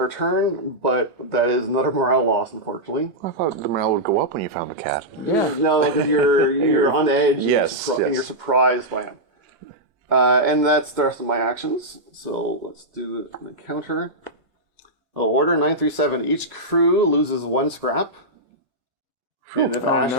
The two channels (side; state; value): left; late; 2.1 ms